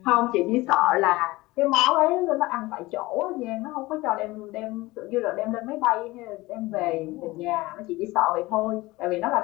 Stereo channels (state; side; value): quieter; right; 20.2 dB